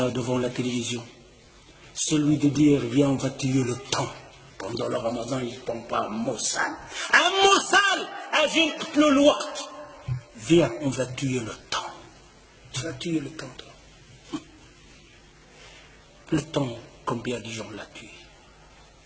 devant la télévision, celui de dire viens on va tuer le temps. Pendant le ramadan ils ne font pas un mot sale. Un mot sale, agit le waqt. Viens on va tuer le temps. Tu vas tuer le temps toi. Le temps, combien de gens l'a tué?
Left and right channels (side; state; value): both; identical; correlation 1.00